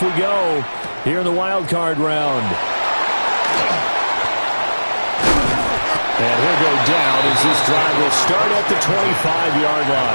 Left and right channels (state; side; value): inverted; both; correlation -1.00